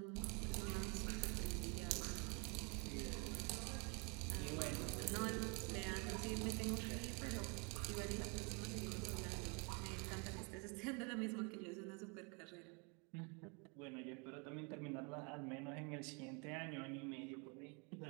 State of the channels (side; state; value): left; quieter; 32.9 dB